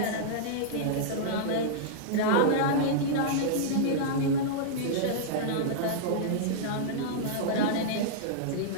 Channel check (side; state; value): both; different; correlation -0.02